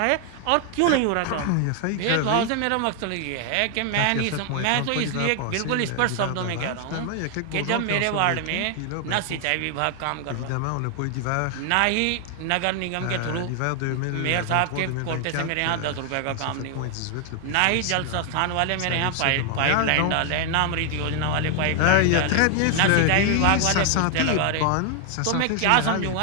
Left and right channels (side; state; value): both; different; correlation 0.00